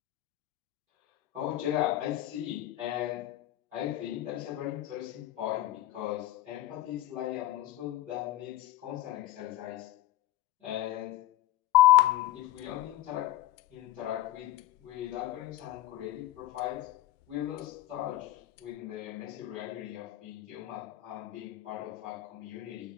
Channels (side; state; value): right; quieter; 14.8 dB